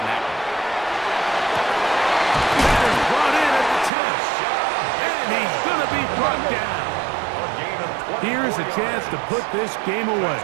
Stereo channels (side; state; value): left; drops out; at 3.9 s